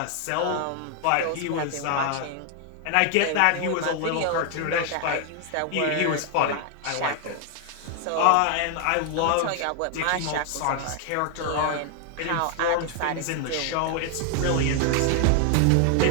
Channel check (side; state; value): both; different; correlation 0.00